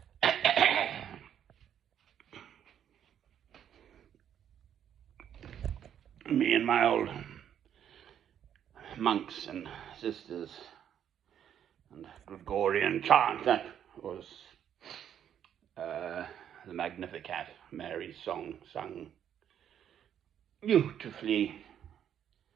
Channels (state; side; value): quieter; left; 9.5 dB